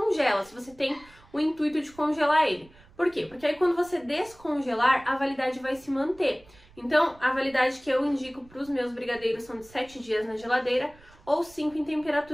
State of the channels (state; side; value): noise; right; rumble, 26 dB below the sound